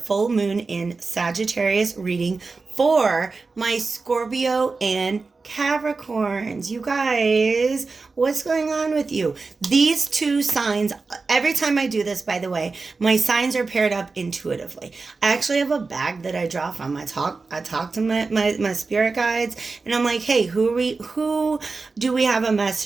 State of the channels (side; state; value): left; quieter; 4.1 dB